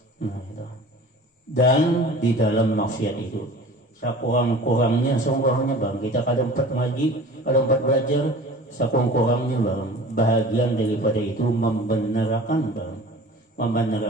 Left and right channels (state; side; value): normal; both; correlation 0.41